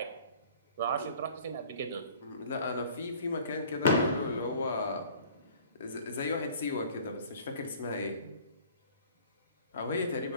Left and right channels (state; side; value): inverted; both; correlation -0.50